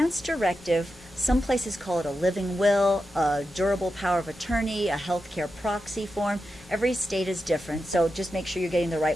directive, some places call it a living will, a durable power of attorney, a healthcare proxy form. Every state is different, so just make sure you're getting the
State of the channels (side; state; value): both; normal; correlation 0.89